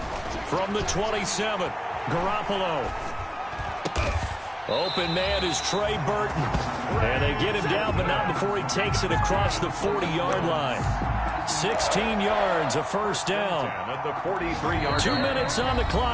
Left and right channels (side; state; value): both; identical; correlation 1.00